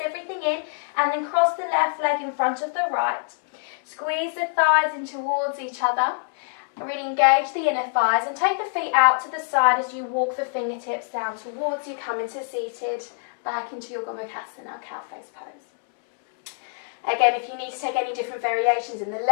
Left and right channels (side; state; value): right; silent; 62 dB below the other